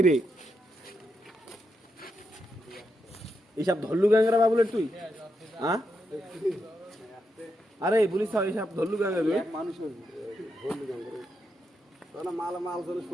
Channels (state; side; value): normal; both; correlation 0.83